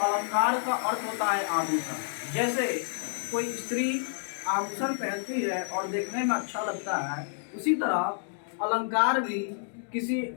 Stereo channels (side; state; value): right; silent; digital silence